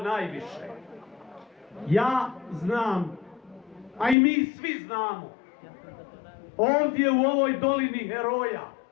Ja znam, a i mi svi znamo, ovdje u ovoj dolini heroja,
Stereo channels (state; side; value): drops out; right; at 4.2 s